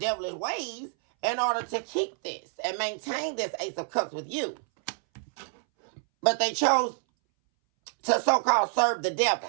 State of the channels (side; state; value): left; silent; 60 dB below the other